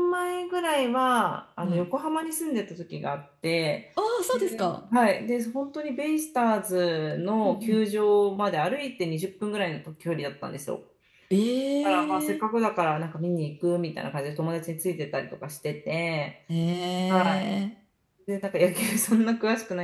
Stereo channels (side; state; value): both; identical; correlation 1.00